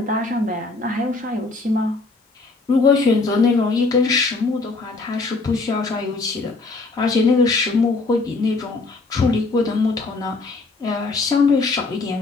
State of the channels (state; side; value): quieter; right; 3.6 dB